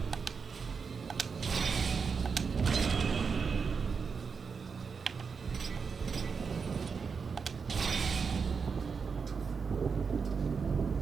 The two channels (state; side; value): quieter; left; 5.5 dB